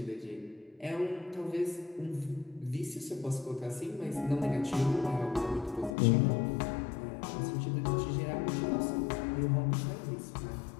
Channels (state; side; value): drops out; right; at 6.0 s